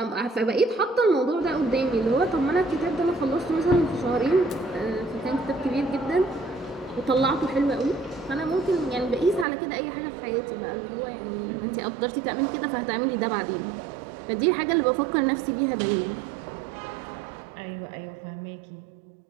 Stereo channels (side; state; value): left; drops out; at 9.5 s